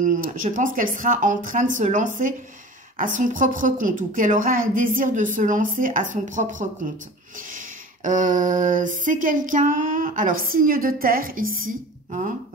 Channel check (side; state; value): both; normal; correlation 0.39